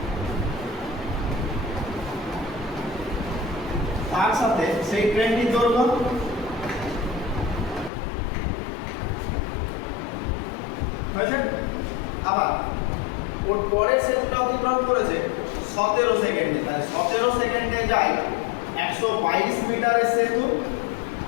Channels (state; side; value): drops out; right; at 7.9 s